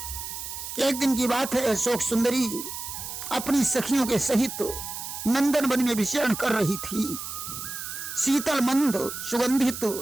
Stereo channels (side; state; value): right; noise; hiss, 8 dB below the sound